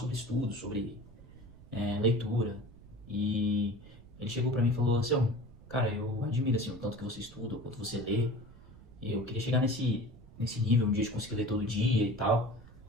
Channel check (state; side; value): noise; right; rumble, 21 dB below the sound